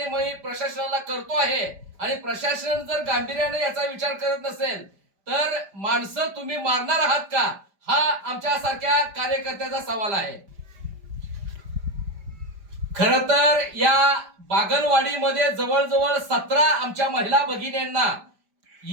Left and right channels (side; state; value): left; late; 5.0 ms